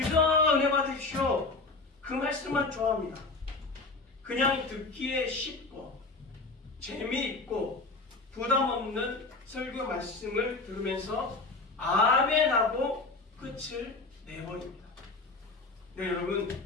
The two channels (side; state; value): right; quieter; 3.5 dB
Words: 은혜 받으십시오. 그 말씀만 좋아합니다. 그냥 듣기에 쉽고 재미있고 부담 없는 설교 말씀을 들으면서 아멘하고 끝을 내버립니다. 네, 여러분,